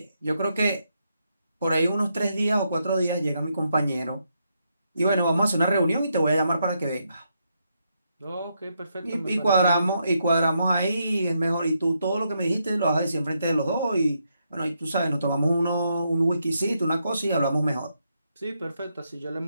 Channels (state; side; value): inverted; both; correlation -0.80